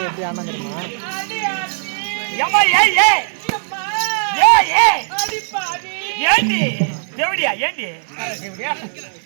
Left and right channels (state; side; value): silent; left; digital silence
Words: ஏண்டி தேவடியா ஏண்டி யார தேவடியா